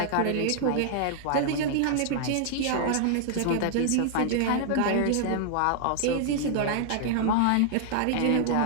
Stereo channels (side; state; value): both; different; correlation 0.00